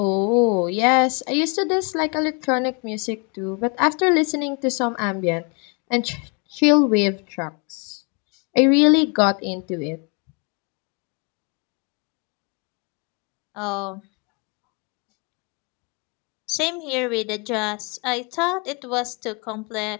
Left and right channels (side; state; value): right; quieter; 33.6 dB